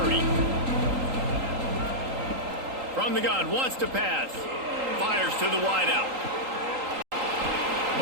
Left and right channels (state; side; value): late; left; 3.8 ms